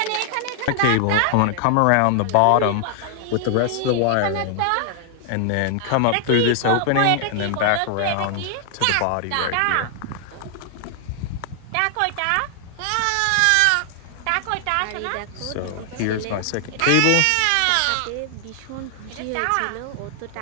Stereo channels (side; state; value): both; different; correlation 0.00